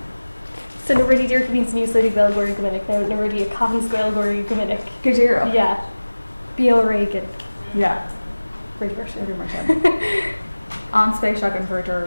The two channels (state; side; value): inverted; both; correlation -1.00